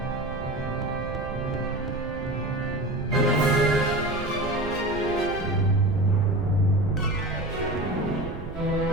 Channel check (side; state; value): right; noise; rumble, 11 dB below the sound